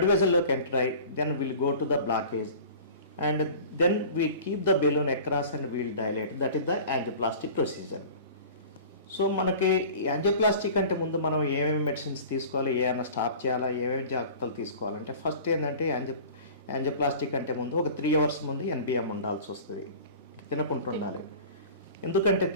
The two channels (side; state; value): both; inverted; correlation -0.41